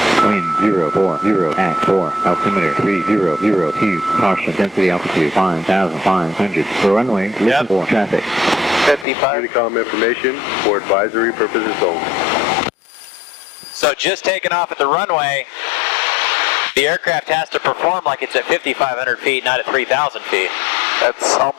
Wind 040 at 4, altimeter 3002, caution, density altitude 5,500. For runway, listen for traffic. 55. Unicom information for advisory purposes only. So just taking off at the runway, the aircraft has to perform like it's at 5,500 feet, not at 3,000 feet. That's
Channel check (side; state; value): right; drops out; at 9.1 s